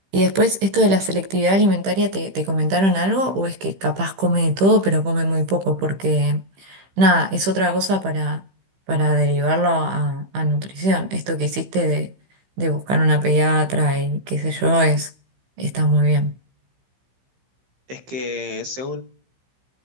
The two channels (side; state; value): left; late; 15 ms